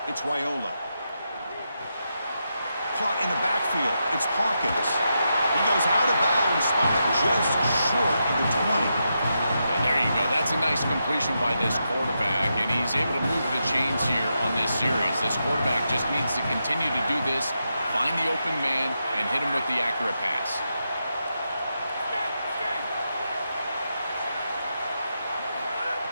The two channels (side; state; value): both; inverted; correlation -0.85